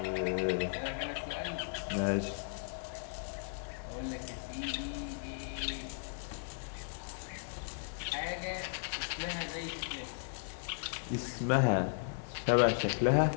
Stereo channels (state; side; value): silent; right; 54 dB below the other